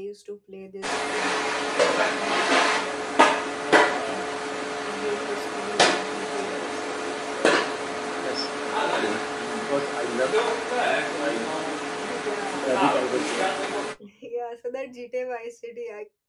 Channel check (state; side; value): identical; both; correlation 1.00